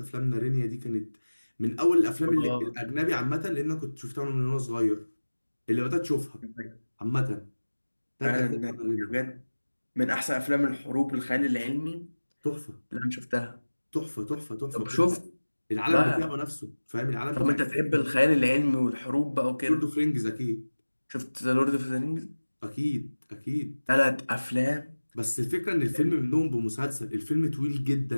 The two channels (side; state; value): both; inverted; correlation -1.00